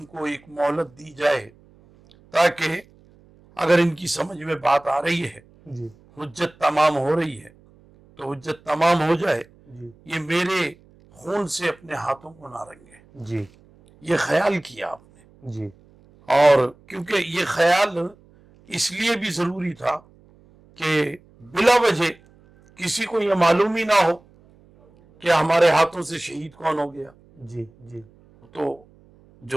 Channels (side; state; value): right; noise; hum, 28 dB below the sound